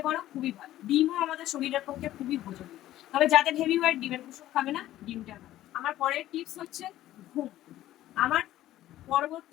পারো খুবই ভালো। ডিমও আমাদের শরীরের পক্ষে খুবই উপযোগী। তবে যাদের হেভি ওয়েট, ডিমের কুসুম খাবে না, ডিমটা খাবে। আমার পরের টিপস হচ্ছে ঘুম। আমার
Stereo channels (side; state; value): right; quieter; 14.1 dB